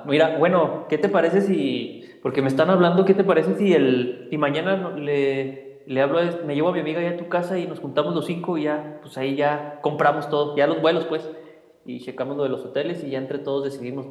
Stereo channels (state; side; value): identical; both; correlation 1.00